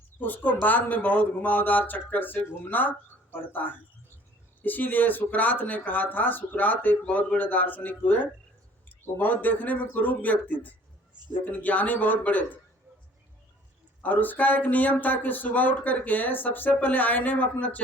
उसको बाद में बहुत घुमावदार चक्कर से घूमना पड़ता है। इसीलिए सुकरात ने कहा था, सुकरात एक बहुत बड़े दार्शनिक हुए, वो बहुत देखने में कुरूप व्यक्ति थे लेकिन ज्ञानी बहुत बड़े थे। और उसका एक नियम था कि सुबह उठ करके सबसे पहले आईने में अपना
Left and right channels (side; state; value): both; normal; correlation 0.53